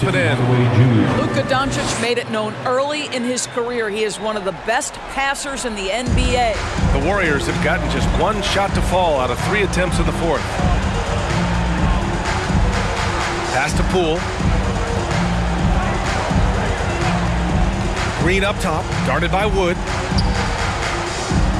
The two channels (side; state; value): both; identical; correlation 1.00